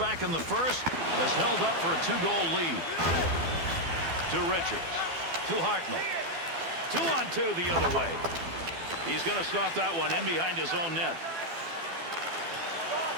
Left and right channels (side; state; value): left; late; 12 ms